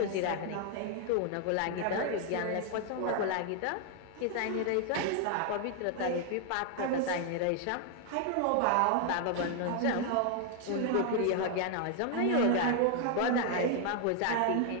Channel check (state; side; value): different; both; correlation 0.00